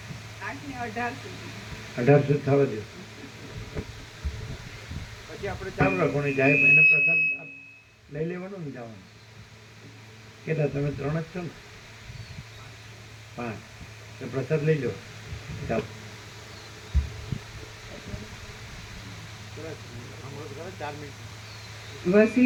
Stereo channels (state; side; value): identical; both; correlation 1.00